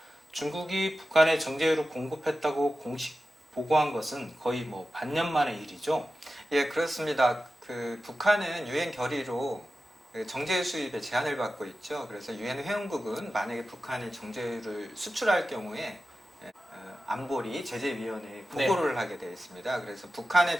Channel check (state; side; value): normal; both; correlation 0.94